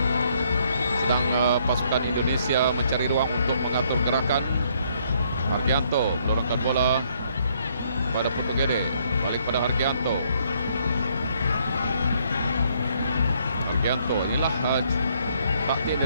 Sedang pasukan Indonesia mencari ruang untuk mengatur gerakan. Argianto menurunkan bola pada Putu Gede. Balik pada Argianto. Argianto, inilah taktik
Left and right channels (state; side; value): inverted; both; correlation -0.69